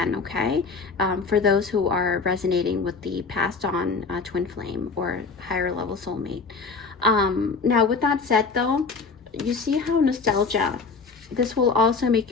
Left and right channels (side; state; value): right; quieter; 4.6 dB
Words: okay? For those who are resonating with the passed on twin flame or higher level soulmate. Now, with that said, though, you see how nostalgia, this will also make